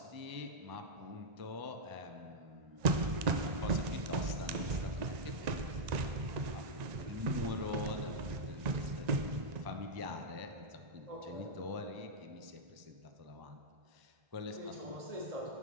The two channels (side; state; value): left; late; 1.9 ms